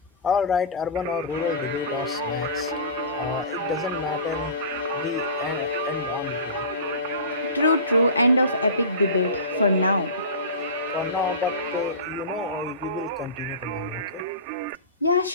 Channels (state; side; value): inverted; both; correlation -0.33